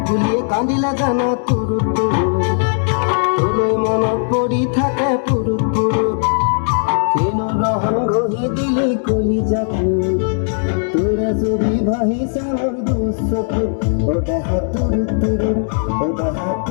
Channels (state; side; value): silent; right; 61 dB below the other